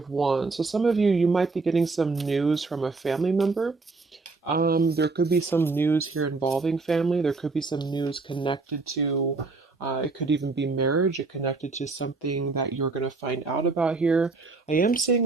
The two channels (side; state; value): left; quieter; 3.9 dB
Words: Wands. So some of you might be getting some news from a family member. There could be some news here involving family. There could be some news connected to, it could even be marriage. It connected to something that you're going to find out about here. I am